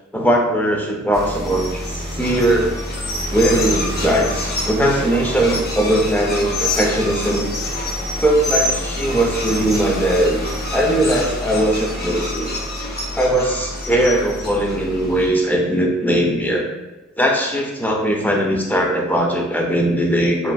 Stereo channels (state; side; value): normal; both; correlation 0.56